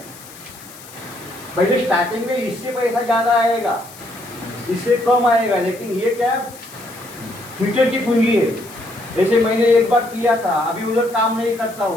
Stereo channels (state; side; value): noise; left; hiss, 19 dB below the sound